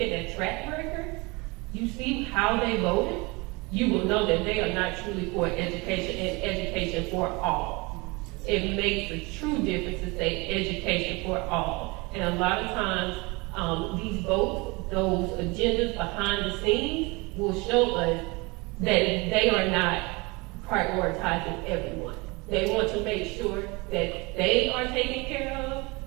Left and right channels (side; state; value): left; quieter; 26.1 dB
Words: their track record, you see how they voted, you will know that they are not truly for education and education for all. It makes a true difference to say education for all. And a lot of times, these votes those agendas behind the scenes will show us that they are not prioritizing everyone. They want to make sure that they are taken care of